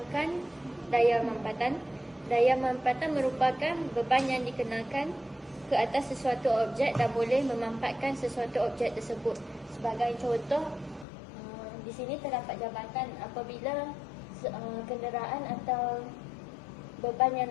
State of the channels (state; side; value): drops out; right; at 11.1 s